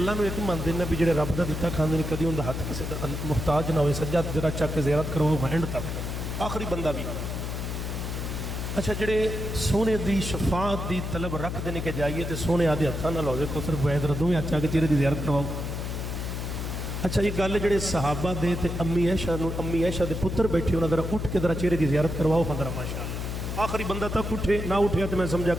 نو ایک منتے ہیں بھی جڑے رب دا دتا کھاندے نے کدی اندا ہاتھ کسے دا محتاج نہ ہوئے سجا ذرا چک کے زیارت کرو اینڈ تک آخری بندہ بھی اچھا جڑے سونے دی شفاعت دی طلب رکھ دینے کے جائیے تے سونے آدھے ہاتھاں نال ہوے کو صرف وید ردوں میں اچھا کے چہرے دی زیارت کرواؤ اچھا یہ گل جڑے صحابہ دے تے امی عائشہ دے پتر بیٹھے انہاں ذرا اٹھ کے ذرا چہرے دی زیارت کرواؤ ذرا ماشاءاللہ آخری بندہ تک اٹھے نہ اٹھیا تے میں سمجھا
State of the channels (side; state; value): left; noise; hum, 4 dB below the sound